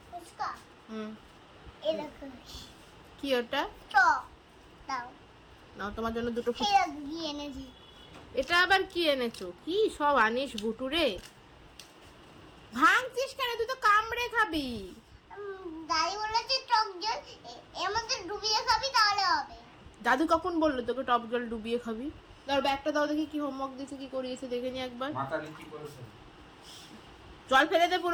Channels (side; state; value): both; identical; correlation 1.00